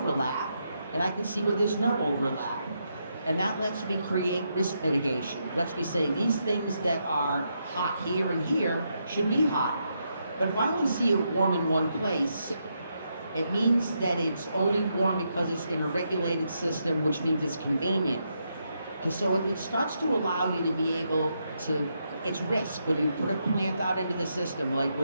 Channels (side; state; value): both; inverted; correlation -0.81